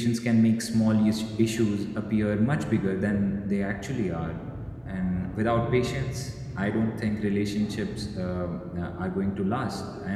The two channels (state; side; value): identical; both; correlation 1.00